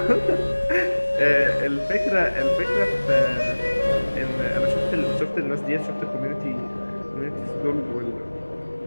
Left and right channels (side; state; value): both; inverted; correlation -1.00